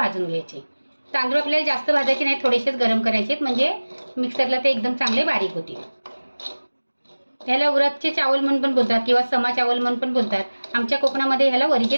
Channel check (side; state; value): both; inverted; correlation -1.00